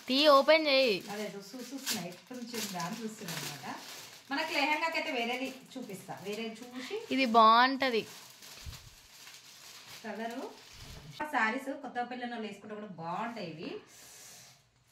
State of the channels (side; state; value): both; identical; correlation 1.00